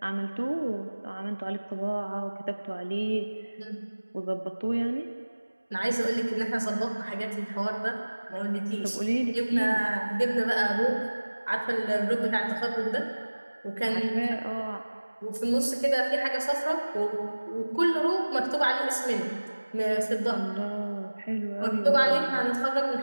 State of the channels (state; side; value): inverted; both; correlation -1.00